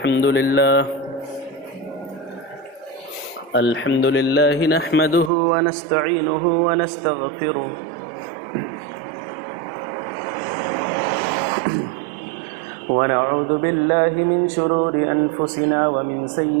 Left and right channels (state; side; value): drops out; left; at 5.3 s